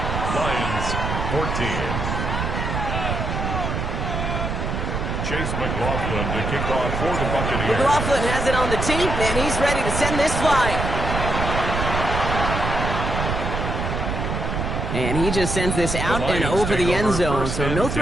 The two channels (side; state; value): right; noise; rumble, 2 dB below the sound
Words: Lions 14. Chase McLaughlin to kick off for the Buccaneers. McLaughlin has it on the tee, and he's ready to send this flying. And he just sends this out and over the end zone, so no